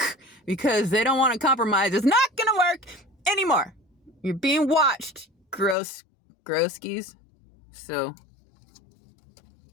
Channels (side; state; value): right; drops out; at 5.8 s